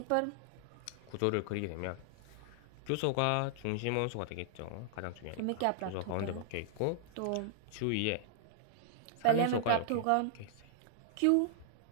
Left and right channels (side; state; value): both; different; correlation -0.01